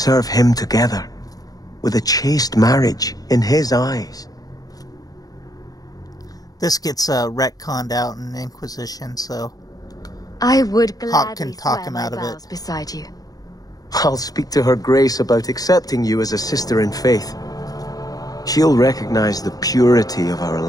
him together, with a chaste marriage in his eyes. This gets retconned out in Inquisition, so I would Hawke gladly can talk swear him my out of it. vows beside you. I'll speak to her Grace about accepting you as a sister in faith. She'll recognize the purity of our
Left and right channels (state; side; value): late; right; 0.18 ms